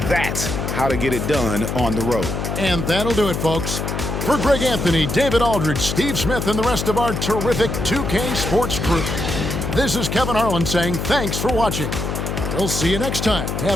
that's how to get it done on the road. And that'll do it, folks. For Greg Anthony, David Aldridge, Steve Smith, and the rest of our terrific 2K Sports crew, this is Kevin Harlan saying thanks for watching. We'll see you next time.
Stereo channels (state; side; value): noise; left; hum, 3 dB below the sound